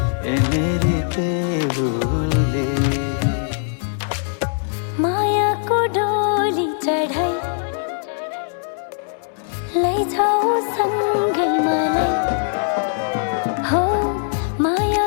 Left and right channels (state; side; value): silent; right; digital silence